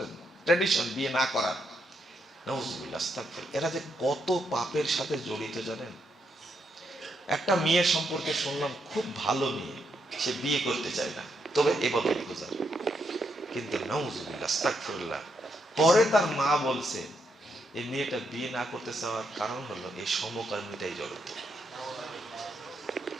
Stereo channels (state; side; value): normal; both; correlation 0.79